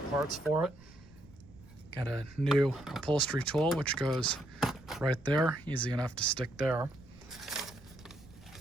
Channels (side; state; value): right; noise; rumble, 23 dB below the sound